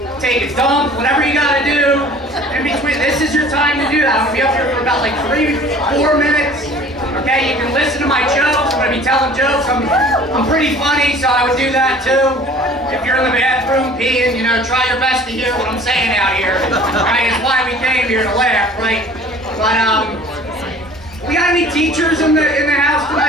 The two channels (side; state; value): both; normal; correlation 0.48